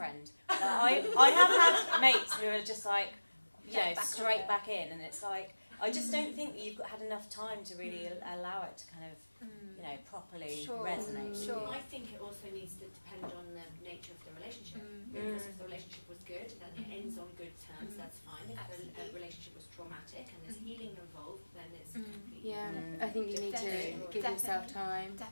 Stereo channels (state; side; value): inverted; both; correlation -1.00